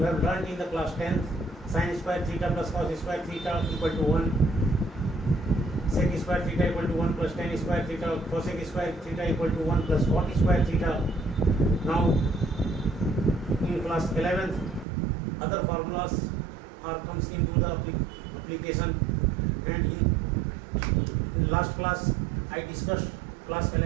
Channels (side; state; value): left; drops out; at 14.9 s